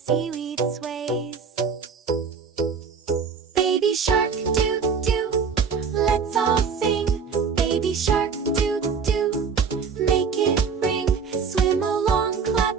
sways. Baby shark doo-doo, let's all sing. Baby shark doo-doo, make it ring. Swim along,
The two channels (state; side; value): quieter; left; 5.9 dB